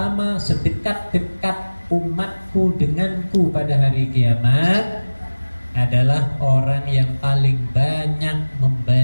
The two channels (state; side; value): inverted; both; correlation -1.00